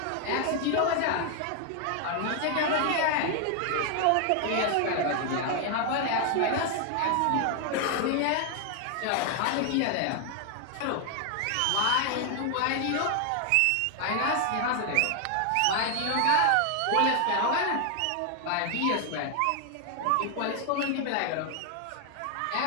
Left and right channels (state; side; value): different; both; correlation 0.00